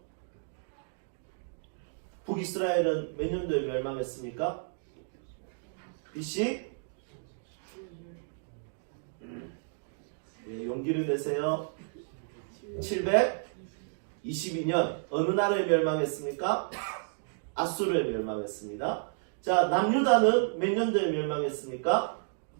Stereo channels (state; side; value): silent; left; digital silence